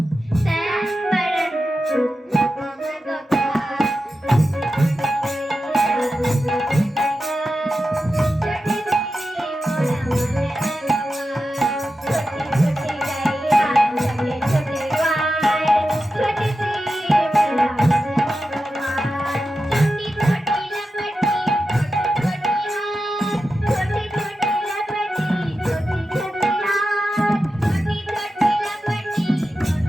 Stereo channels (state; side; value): normal; both; correlation 0.91